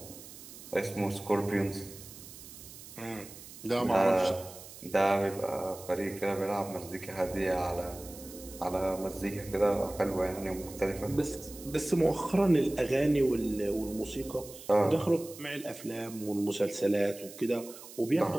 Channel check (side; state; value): right; noise; hiss, 16 dB below the sound